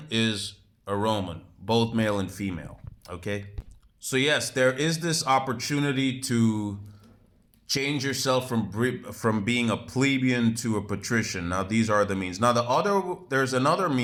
is a Roman, both male and female. Okay? So, yes, there is this opportunity to change yourself from being a plebeian to a patrician. Now, these are the means. Now, there's another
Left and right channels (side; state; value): both; identical; correlation 1.00